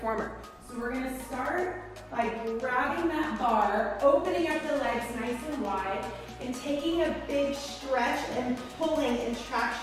So we're gonna start by grabbing that bar, opening up the legs nice and wide, and taking a big stretch and pulling and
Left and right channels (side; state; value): both; identical; correlation 1.00